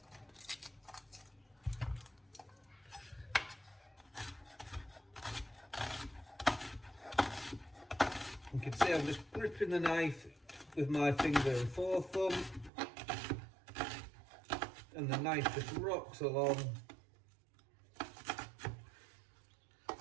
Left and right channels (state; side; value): drops out; left; at 12.7 s